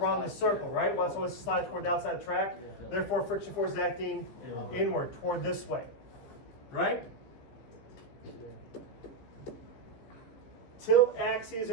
the circle, right? Once it slides toward the outside of the track, therefore friction force is acting inward, toward this way, right? Tilt axes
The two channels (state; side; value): late; right; 15 ms